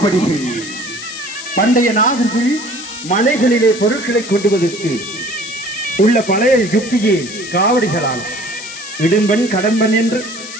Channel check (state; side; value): noise; left; hiss, 12 dB below the sound